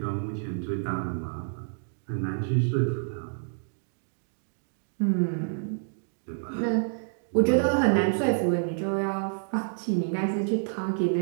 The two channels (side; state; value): left; silent; digital silence